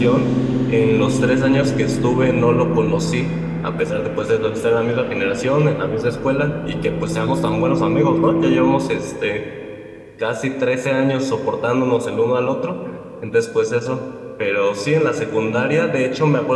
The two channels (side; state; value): both; identical; correlation 1.00